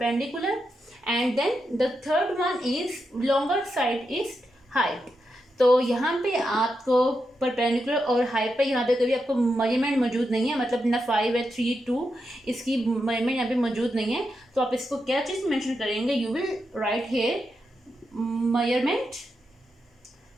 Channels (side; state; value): both; normal; correlation 0.86